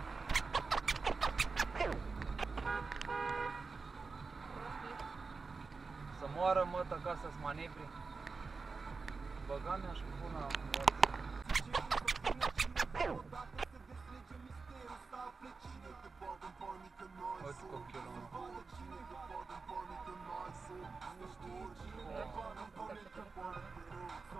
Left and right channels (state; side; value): quieter; left; 4.4 dB